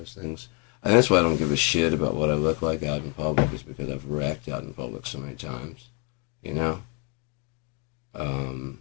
things. And that's why I don't give a shit about what I look like out in public, is because I've wrecked out in public so many times, I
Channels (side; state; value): right; quieter; 29.5 dB